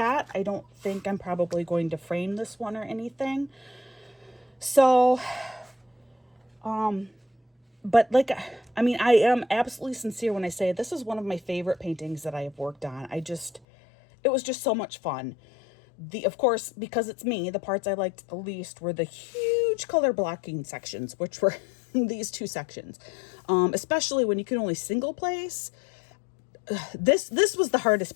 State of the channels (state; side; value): drops out; right; at 13.6 s